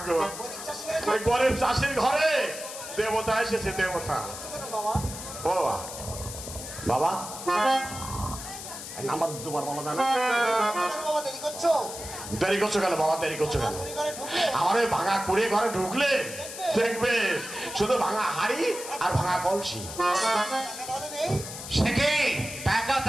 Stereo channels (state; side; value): noise; left; hiss, 10 dB below the sound